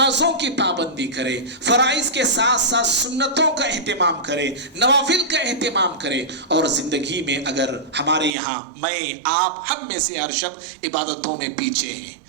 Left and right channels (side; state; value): left; drops out; at 8.3 s